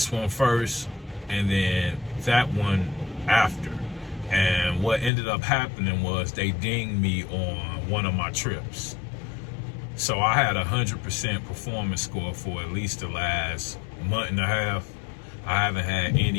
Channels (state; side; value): drops out; right; at 5.1 s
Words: one first and then that one after. And what ended up happening was they dinged me on one of my trips. So I had 100% performance score for at least the last month and a half. I haven't had